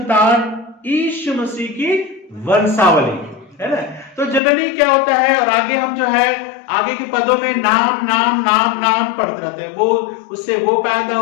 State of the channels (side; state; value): right; drops out; at 4.4 s